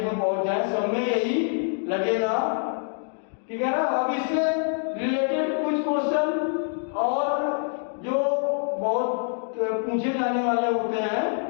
में पहुंच जाए, सब में यही लगेगा, ठीक है ना। अब इससे रिलेटेड कुछ क्वेश्चन और जो बहुत पूछे जाने वाले होते हैं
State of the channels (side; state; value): right; silent; 56 dB below the other